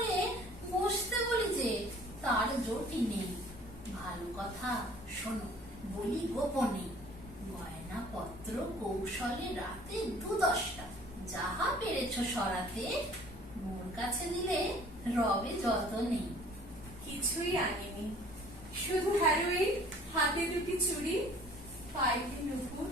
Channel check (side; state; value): both; normal; correlation 0.52